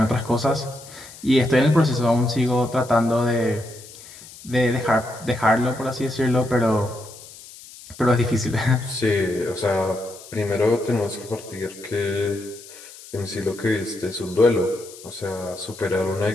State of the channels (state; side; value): noise; left; hiss, 18 dB below the sound